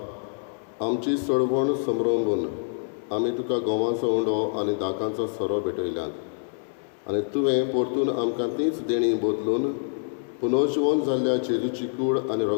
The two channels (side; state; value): right; silent; 61 dB below the other